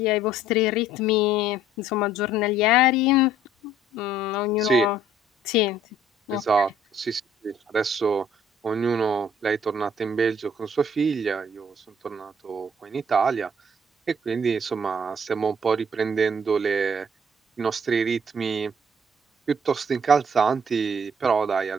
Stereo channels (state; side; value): normal; both; correlation 0.59